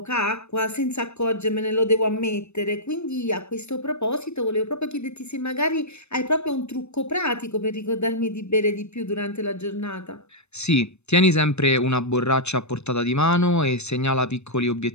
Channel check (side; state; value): right; late; 0.81 ms